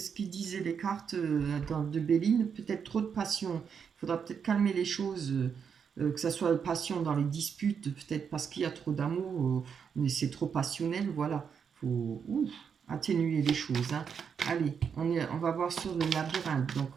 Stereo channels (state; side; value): quieter; left; 6.9 dB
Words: qu'ils disaient les cartes de Béline. Peut-être trop de passion. Il faudra peut-être calmer les choses. Que ça soit passion dans les disputes. Peut-être parce qu'il y a trop d'amour. Mais c'est trop passionnel. Voilà. Il faut atténuer les choses, hein. Allez, on va voir sur le labyrinthe. Donc,